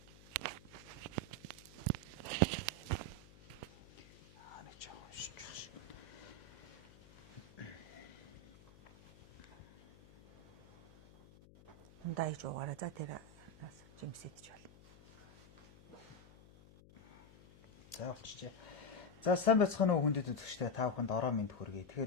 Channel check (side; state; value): left; noise; hum, 22 dB below the sound